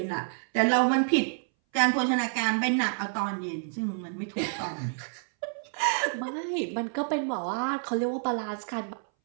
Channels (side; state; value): left; silent; 59 dB below the other